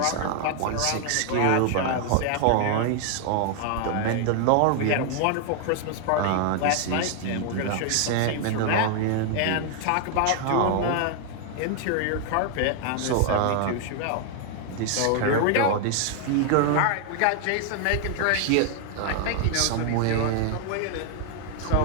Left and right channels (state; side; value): different; both; correlation 0.00